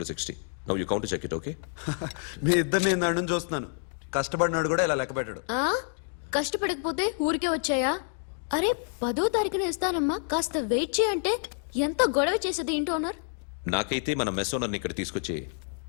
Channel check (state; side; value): silent; right; 58 dB below the other